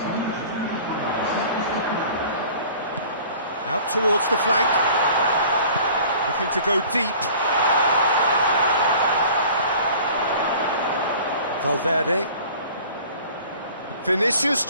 Out towards the flank. Looking to go deep. Valverde. Vinicius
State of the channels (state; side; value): inverted; both; correlation -0.46